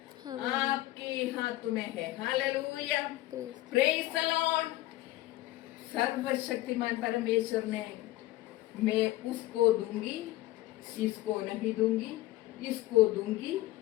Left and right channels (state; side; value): quieter; right; 16.9 dB